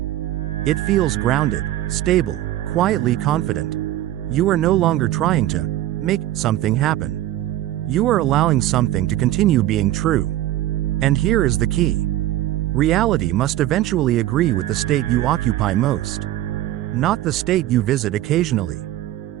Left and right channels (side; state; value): left; quieter; 14.1 dB